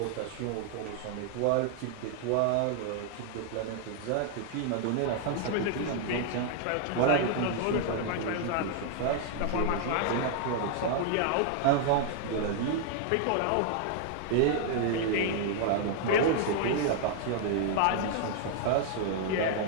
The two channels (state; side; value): different; both; correlation 0.00